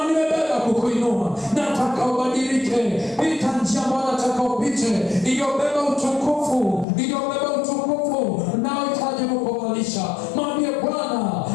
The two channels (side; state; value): right; drops out; at 6.9 s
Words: nimebeba kukuinua. Nataka ubadilike, pita njia ambayo nataka upite, iliyobeba utukufu, iliyobeba utukufu na uhitaji kukuvalisha. Mwambie Bwana,